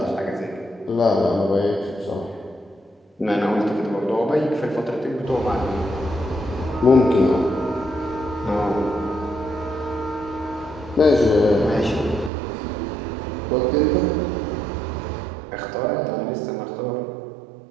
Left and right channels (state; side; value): drops out; left; at 12.3 s